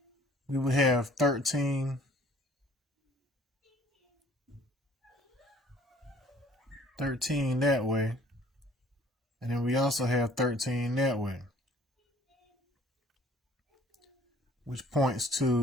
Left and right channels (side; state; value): both; normal; correlation 0.55